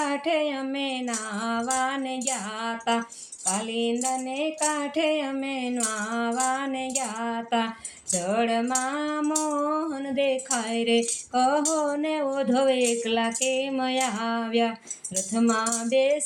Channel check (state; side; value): identical; both; correlation 1.00